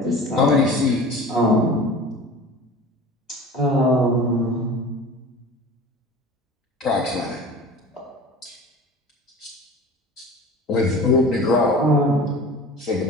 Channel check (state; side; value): normal; both; correlation 0.38